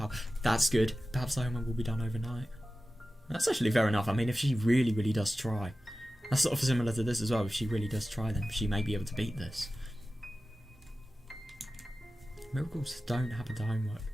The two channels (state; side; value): normal; both; correlation 0.95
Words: That's good. Perhaps the homework will be done overnight. That's actually fair enough. I mean, if she really, really does try. That's sort of similar to this as well. If she really does try, then she may be able to beat this. Miracles don't happen to homework.